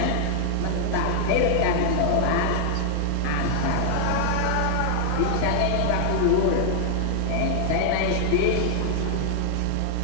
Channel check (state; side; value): different; both; correlation 0.00